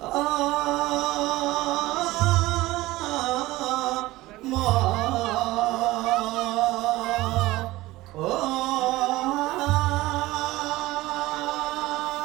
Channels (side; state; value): left; quieter; 18.4 dB